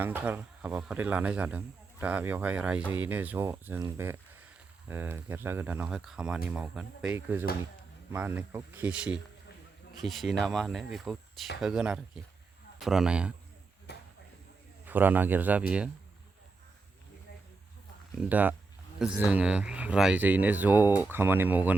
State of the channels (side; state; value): left; quieter; 4.0 dB